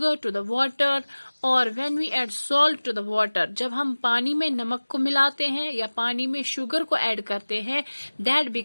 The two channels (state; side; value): inverted; both; correlation -1.00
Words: to the water or when we add salt to the water. जब हम पानी में नमक को मिलाते हैं या पानी में शुगर को ऐड करते हैं, that